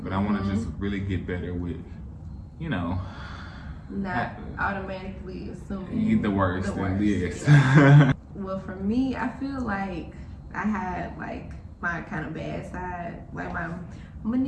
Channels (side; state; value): both; identical; correlation 1.00